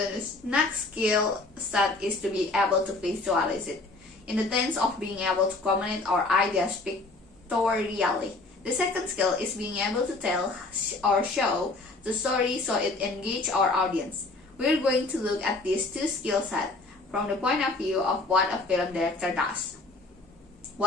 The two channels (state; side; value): quieter; right; 3.2 dB